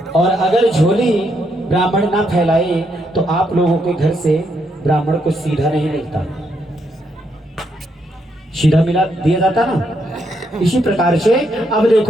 और अगर झोली ब्राह्मण ना फैलाए तो आप लोगों के घर से ब्राह्मण को सीधा नहीं मिलता, सीधा मिला दिया जाता ना। इसी प्रकार से अब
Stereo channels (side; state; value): both; normal; correlation 0.77